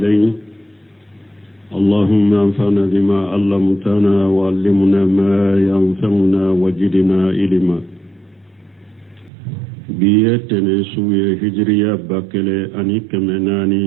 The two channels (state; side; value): drops out; left; at 9.3 s